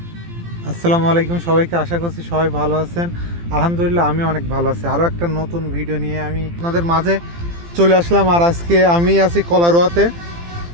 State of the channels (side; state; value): left; late; 18 ms